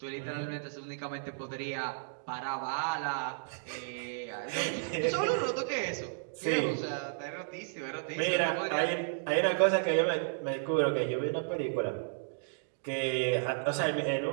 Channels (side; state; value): left; silent; digital silence